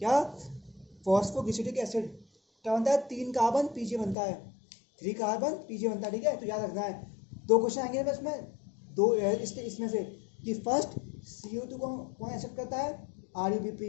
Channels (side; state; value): right; drops out; at 4.2 s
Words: फॉस्फोग्लिसरिक एसिड, क्या बनता है, 3 कार्बन PGA बनता है, 3 कार्बन PGA बनता है, ठीक है, तो याद रखना है। 2 क्वेश्चन आएंगे बस में, दो इसमें से कि फर्स्ट CO2 को कौन एक्सेप्ट करता है, RUBP,